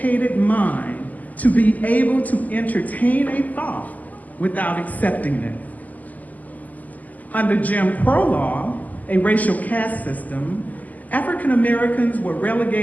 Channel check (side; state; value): right; late; 0.079 ms